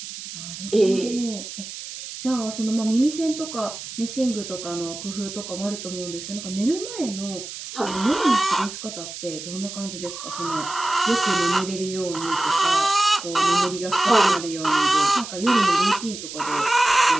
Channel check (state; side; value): noise; right; hiss, 10 dB below the sound